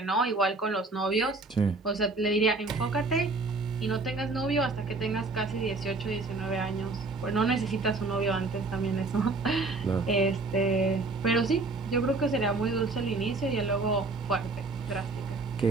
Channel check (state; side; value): quieter; left; 3.5 dB